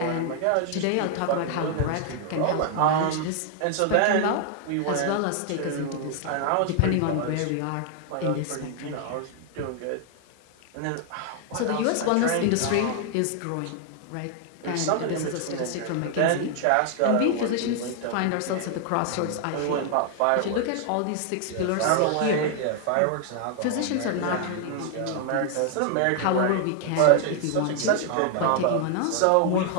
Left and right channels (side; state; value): both; different; correlation 0.00